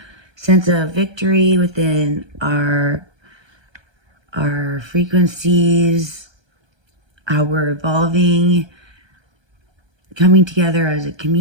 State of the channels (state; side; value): late; left; 1.3 ms